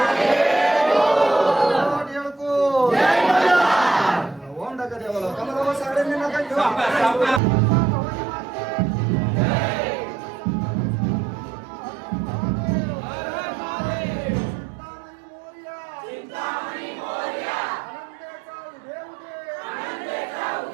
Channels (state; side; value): drops out; left; at 7.4 s